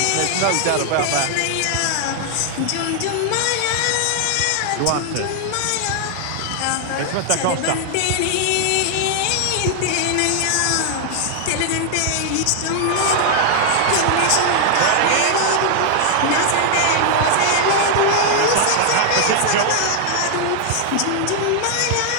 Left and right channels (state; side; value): different; both; correlation 0.00